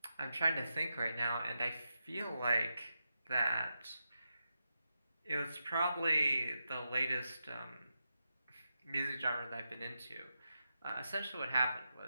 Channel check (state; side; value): inverted; both; correlation -0.87